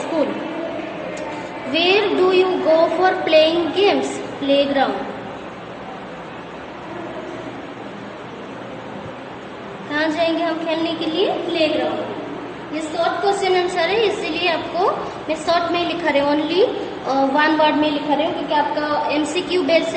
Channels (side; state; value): both; identical; correlation 1.00